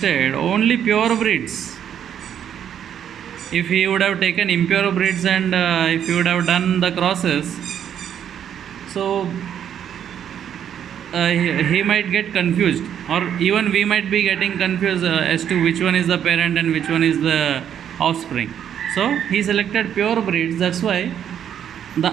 only pure breeds. If he would have taken impure breeds and if he would have done the crosses, so he might get confused, or even we might be getting confused as to which one is the parent and which one is the offspring. So he selected pure breeds. That's why the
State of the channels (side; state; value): left; quieter; 9.3 dB